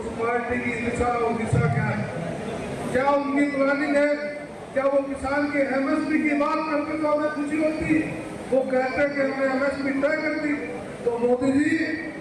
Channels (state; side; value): identical; both; correlation 1.00